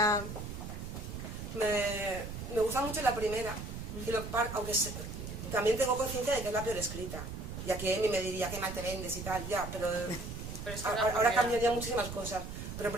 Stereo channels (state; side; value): noise; right; rumble, 8 dB below the sound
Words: Me gusta mucho la primera, y aunque también tengo conciencia de que es la peor escrita. Y aquí Amy me diría que mal te vendes y tal, ya, pero Pero es que la ahora primera- cambiaría muchísimas cosas. Pero en